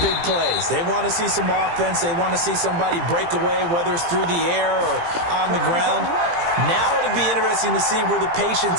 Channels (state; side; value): late; left; 18 ms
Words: plays. They want to see some offense. They want to see somebody break away, whether it's through the air or on the ground. Now it'll be interesting to see where the